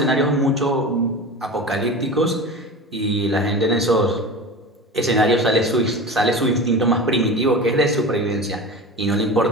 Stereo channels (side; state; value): both; normal; correlation 0.31